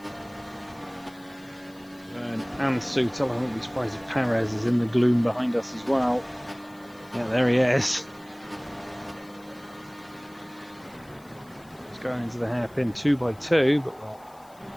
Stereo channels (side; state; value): left; noise; hiss, 28 dB below the sound